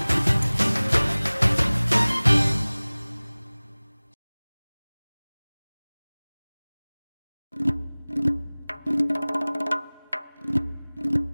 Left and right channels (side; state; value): both; inverted; correlation -1.00